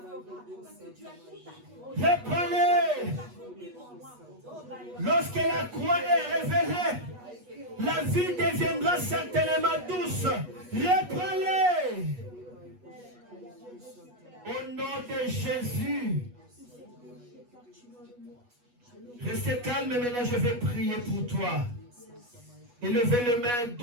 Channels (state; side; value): late; left; 8.2 ms